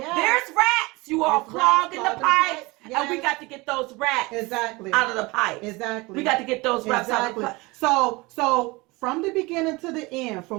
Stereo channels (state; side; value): quieter; left; 23.8 dB